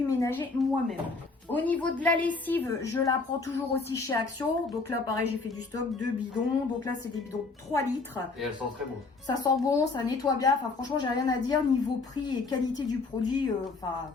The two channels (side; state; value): right; quieter; 4.0 dB